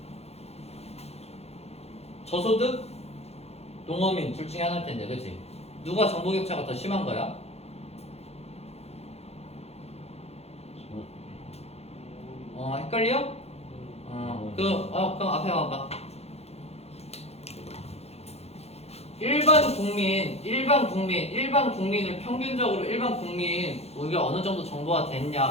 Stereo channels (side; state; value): right; late; 0.30 ms